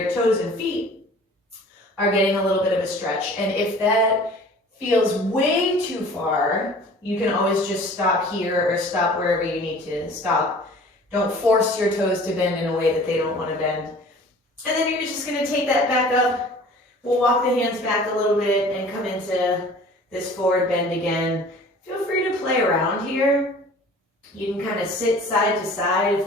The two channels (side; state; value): both; normal; correlation 0.46